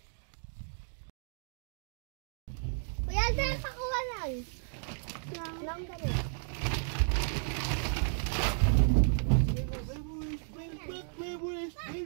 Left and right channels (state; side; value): silent; left; digital silence